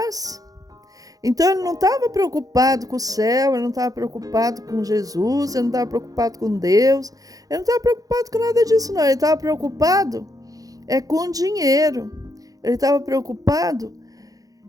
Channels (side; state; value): left; late; 0.17 ms